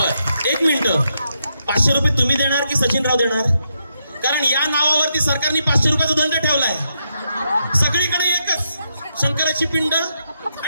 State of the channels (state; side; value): inverted; both; correlation -0.81